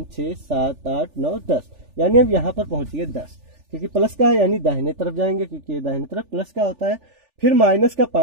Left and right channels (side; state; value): left; late; 3.4 ms